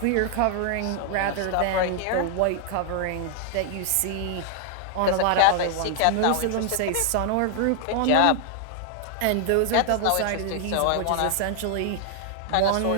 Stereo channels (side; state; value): both; different; correlation 0.00